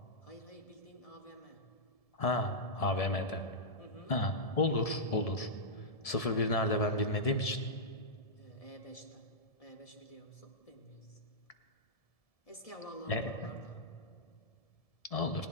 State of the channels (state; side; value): late; right; 1.7 ms